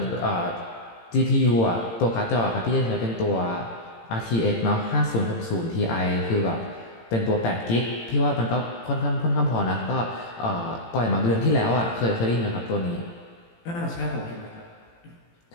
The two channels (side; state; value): right; late; 18 ms